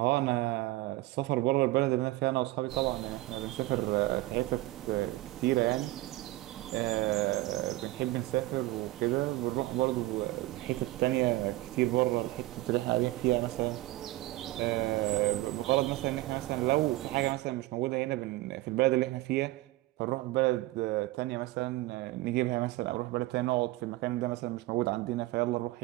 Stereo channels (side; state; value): left; quieter; 18.4 dB